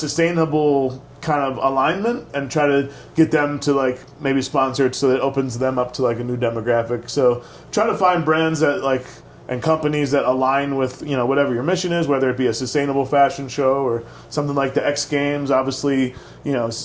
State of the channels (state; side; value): identical; both; correlation 1.00